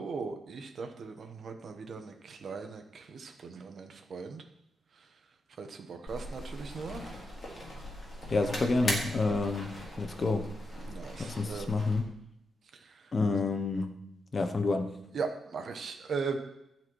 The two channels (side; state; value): both; normal; correlation 0.84